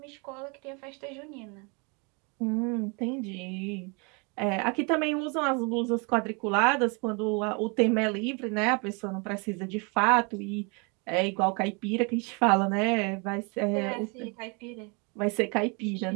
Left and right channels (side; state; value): left; quieter; 32.3 dB